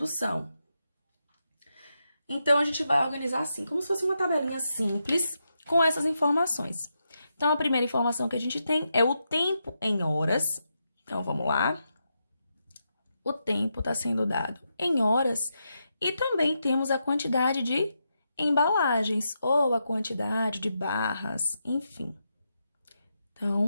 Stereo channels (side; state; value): both; inverted; correlation -0.84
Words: Então, a gente vai organizar assim, como se fosse uma tabelinha simples com essas informações. Então, a primeira informação que a gente tem é o tempo em horas. Então, vamos lá. O tempo está sendo dado em horas e também temos a quantidade de embalagens ou a quantidade de barras, enfim.